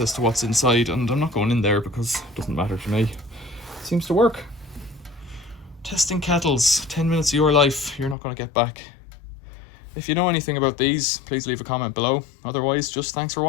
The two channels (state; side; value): drops out; right; at 8.2 s